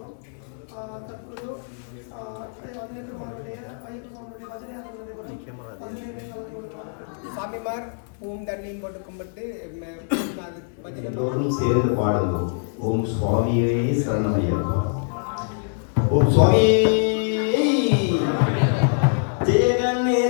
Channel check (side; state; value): right; silent; 58 dB below the other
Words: தற்போது 18 மாதனுடைய ஐயப்பனுடைய பஜனையாக நடைபெறும். பதினைந்து கலந்து கொள்வார்கள். சாமிமார் ஓம் தண்ணியும் போட்டு கும்பிட்டு பஜனை எல்லோரும் சேர்ந்து பாடுங்கள். ஓம் சுவாமியே சரணமையப்பா. ஓம் சுவாமியே ஜெய